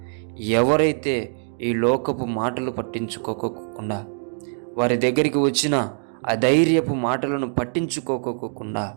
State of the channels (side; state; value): left; silent; 63 dB below the other